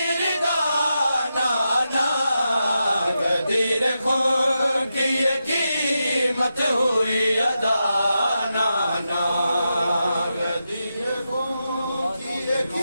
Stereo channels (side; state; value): both; inverted; correlation -0.88